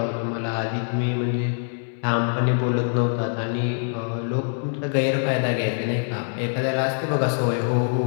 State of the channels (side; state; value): right; silent; 63 dB below the other